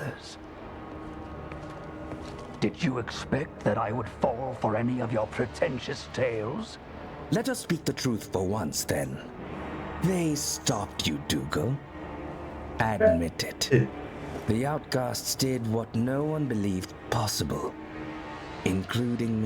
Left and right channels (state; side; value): identical; both; correlation 1.00